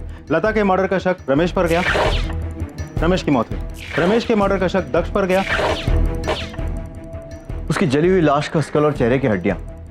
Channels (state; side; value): identical; both; correlation 1.00